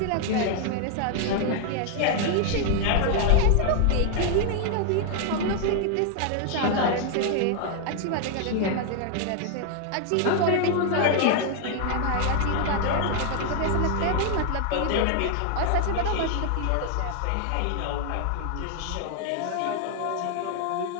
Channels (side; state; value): both; different; correlation 0.00